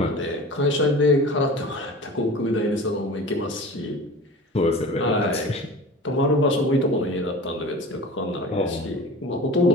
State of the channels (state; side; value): normal; both; correlation 0.36